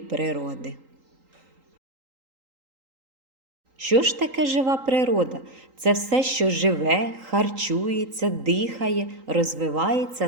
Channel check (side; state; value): left; late; 3.8 ms